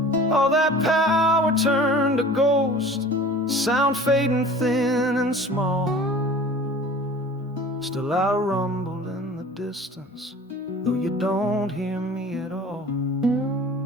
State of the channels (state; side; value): normal; both; correlation 0.43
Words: All that power turned to ghost, sound fading thin and small. Still I rumble in the distance, though you don't hear me at all.